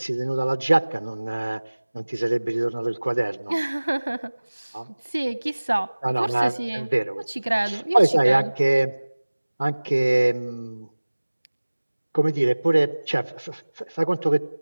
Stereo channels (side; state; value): both; inverted; correlation -1.00